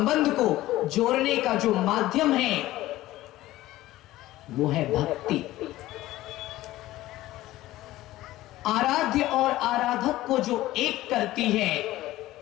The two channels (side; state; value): right; quieter; 16.2 dB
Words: को जोड़ने का जो माध्यम है वो है भक्ति। आराध्य और आराधक को जो एक करती है